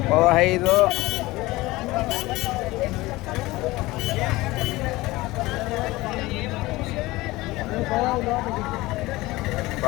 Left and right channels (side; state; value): right; quieter; 19.8 dB